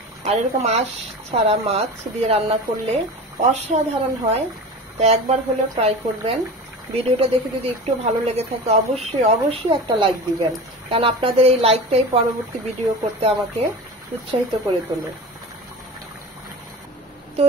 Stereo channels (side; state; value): both; normal; correlation 0.32